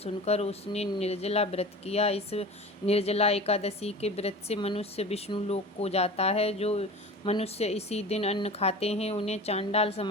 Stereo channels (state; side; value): normal; both; correlation 0.36